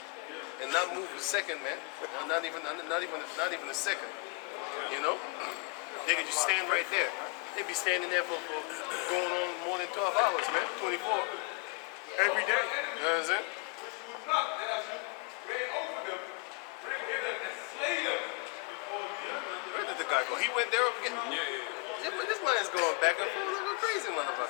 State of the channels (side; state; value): right; quieter; 30.0 dB